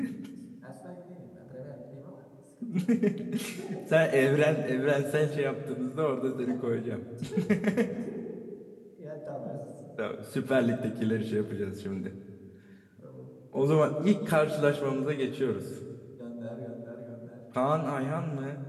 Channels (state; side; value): identical; both; correlation 1.00